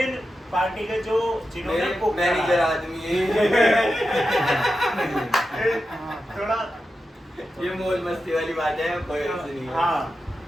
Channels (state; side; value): normal; both; correlation 0.90